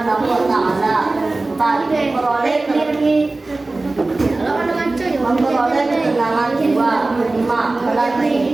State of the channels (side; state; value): left; quieter; 3.2 dB